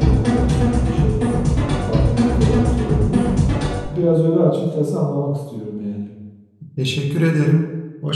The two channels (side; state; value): both; identical; correlation 1.00